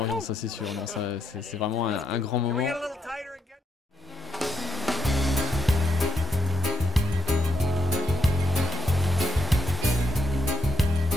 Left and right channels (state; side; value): normal; both; correlation 0.80